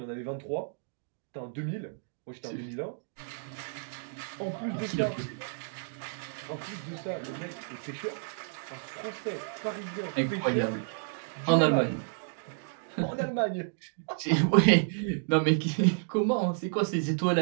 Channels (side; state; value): left; silent; digital silence